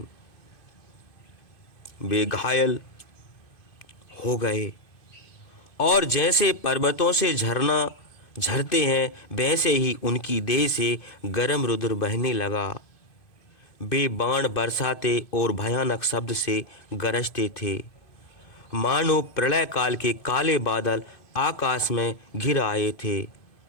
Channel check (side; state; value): right; late; 2.5 ms